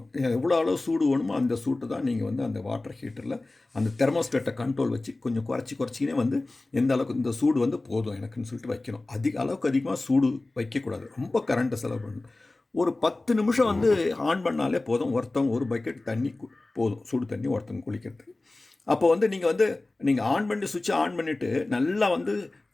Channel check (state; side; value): quieter; right; 3.0 dB